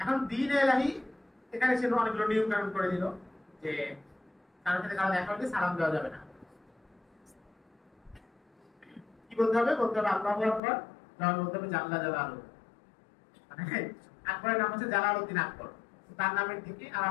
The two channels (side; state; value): right; drops out; at 10.6 s